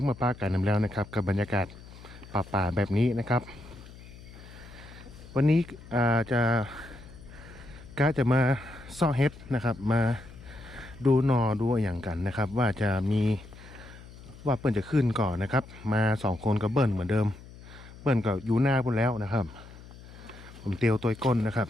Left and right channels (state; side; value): noise; left; hum, 18 dB below the sound